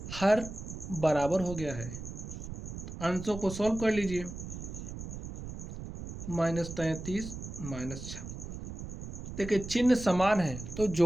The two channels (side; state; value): right; noise; rumble, 9 dB below the sound